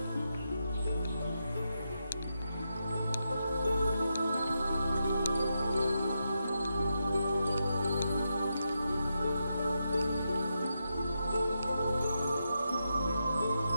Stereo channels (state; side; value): inverted; both; correlation -0.85